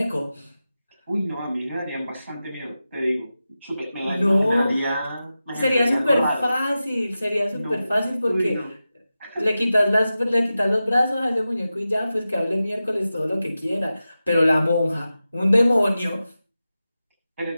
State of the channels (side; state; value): both; inverted; correlation -0.93